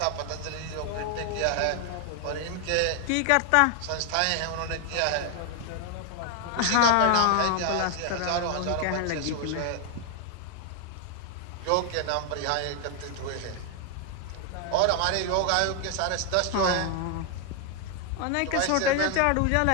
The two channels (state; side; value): different; both; correlation 0.00